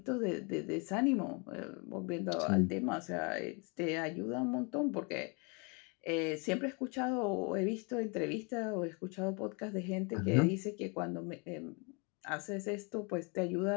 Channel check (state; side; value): quieter; right; 32.5 dB